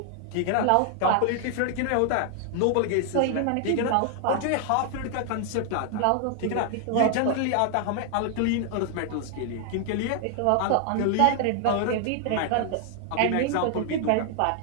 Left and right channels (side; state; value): both; different; correlation 0.00